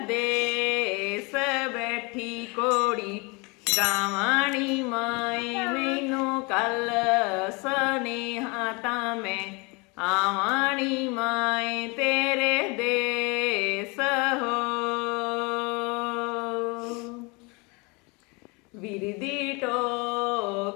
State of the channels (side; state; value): right; quieter; 28.6 dB